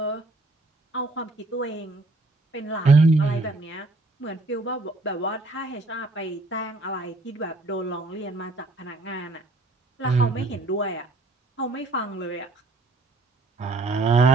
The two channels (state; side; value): quieter; left; 3.1 dB